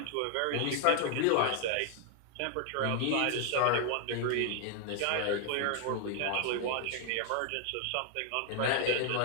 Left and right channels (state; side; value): different; both; correlation 0.00